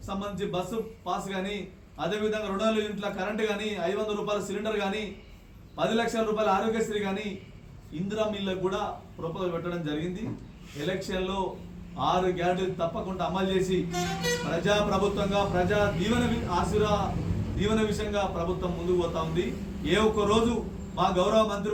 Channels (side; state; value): both; identical; correlation 1.00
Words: సంబంధించి బస్సు పాస్ కానీ, అదేవిధంగా 200 యూనిట్ల కరెంటు కానీ, ₹500 సిలిండర్ కానీ, ₹10 లక్షల ఆరోగ్యశ్రీ కానీ, ఇందిరా మిల్లకు కూడా ప్రపోజల్ పెట్టడం జరిగింది. ఎలక్షన్లో 6 గ్యారంటీలు తప్పకుండా అమలు చేసి ప్రజా ప్రభుత్వంగా ప్రజా దీవెన విషయంగా ప్రభుత్వం ముందుకు పోతా ఉంది. ఏ ఒక్క రోజు మా గౌరవ